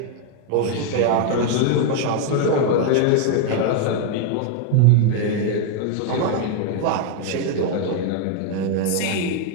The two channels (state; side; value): different; both; correlation 0.00